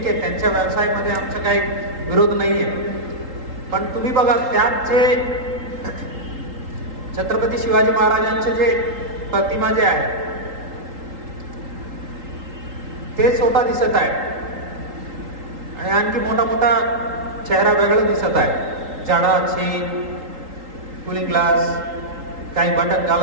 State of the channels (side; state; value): left; late; 3.8 ms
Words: आहे, त्यांच्या व्यवसायामध्ये आमचा काही विरोध नाहीये। पण तुम्ही बघा त्यात जे छत्रपती शिवाजी महाराजांचे जे प्रतिमा जे आहे ते स्वतः दिसत आहे आणि आणखी मोठा मोठा चेहरा वेगळा दिसत आहे। जाडा चेन, कूलिंग ग्लास, काही बटन